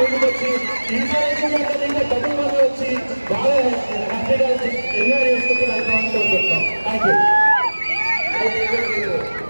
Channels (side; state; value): both; inverted; correlation -1.00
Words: ఇన్స్పిరేషన్ ఇంకా డబ్బుల మంది వచ్చి బాగా హ్యాపీగా ఎంజాయ్ చేసుకుంటూ వెళ్తామని కోరుకుంటున్నాం. Thank you.